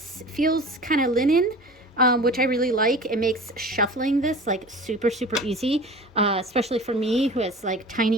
kind of linen. Which I really like. It makes shuffling this like super, super easy, especially for me who has like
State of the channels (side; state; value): both; normal; correlation 0.39